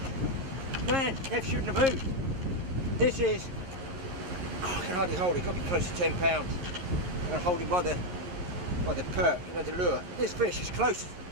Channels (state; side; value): late; left; 11 ms